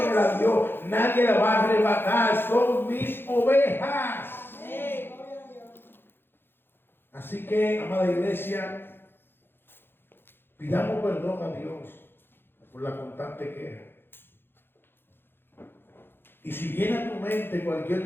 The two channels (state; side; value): late; right; 0.10 ms